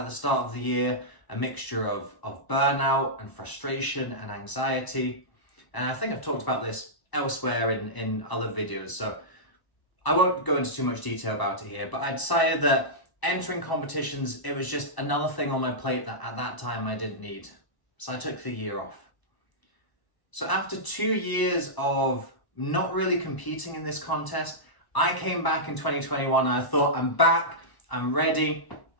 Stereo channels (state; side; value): late; right; 1.0 ms